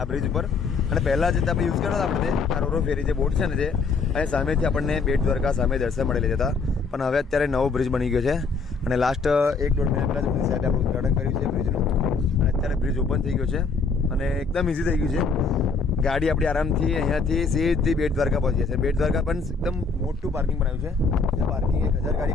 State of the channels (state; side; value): quieter; right; 4.6 dB